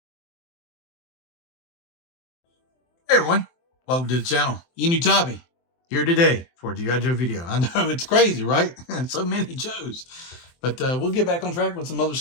Hey everyone, welcome to the channel. Enewtabie here today for a G.I. Joe video. I know it's crazy, right? So many Joes. But we'll get back on track with some other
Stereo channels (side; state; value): right; late; 23 ms